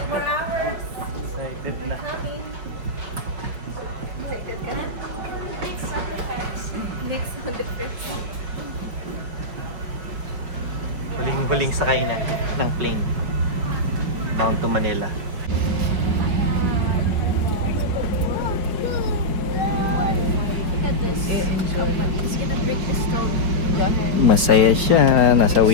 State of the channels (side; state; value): left; late; 5.6 ms